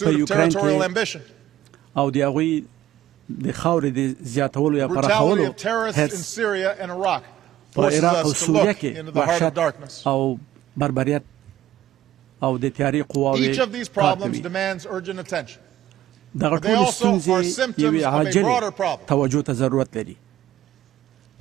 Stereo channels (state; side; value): quieter; left; 13.2 dB